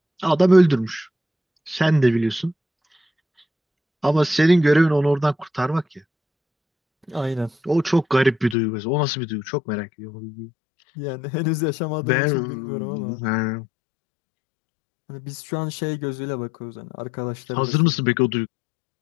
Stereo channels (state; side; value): drops out; right; at 8.6 s